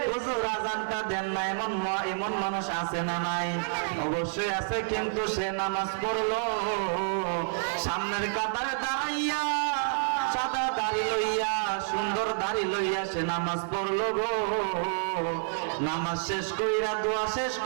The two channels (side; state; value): left; silent; 59 dB below the other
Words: হুজুর আজানটা দেন না। এমন মানুষ আছে না নাই? অবশ্যই আছে, কিন্তু সে নামাজ পড়লো, সামনের কাতারে দাঁড়াইয়া সাদা দাড়ি লইয়া, সুন্দর দাড়ি লইয়া সে নামাজ পড়লো গো। নামাজ শেষ কইরা, দোয়া শেষ